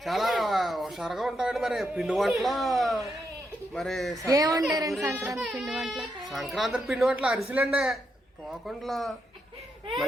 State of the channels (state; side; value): normal; both; correlation 0.81